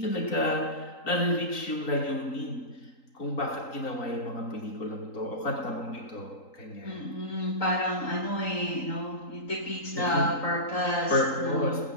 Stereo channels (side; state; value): right; late; 3.8 ms